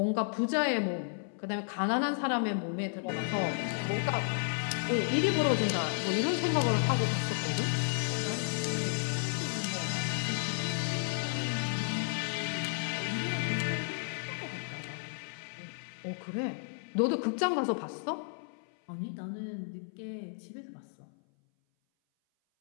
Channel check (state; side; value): silent; right; 56 dB below the other